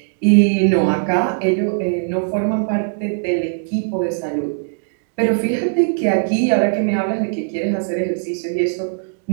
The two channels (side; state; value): left; silent; digital silence